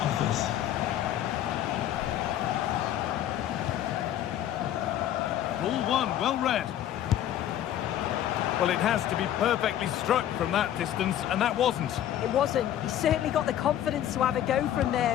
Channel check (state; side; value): quieter; right; 11.5 dB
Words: Ball one, well read. Well, it has to be perfectly struck from that distance, and that wasn't. It wasn't. He's certainly got the confidence to have a go from